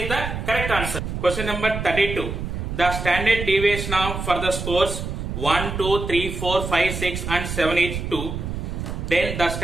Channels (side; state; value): right; noise; rumble, 5 dB below the sound